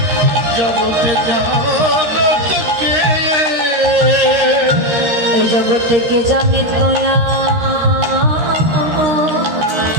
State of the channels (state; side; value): late; left; 13 ms